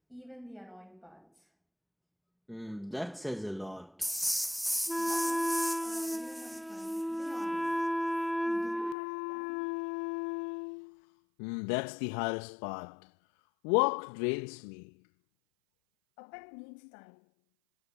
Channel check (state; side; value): drops out; right; at 9.0 s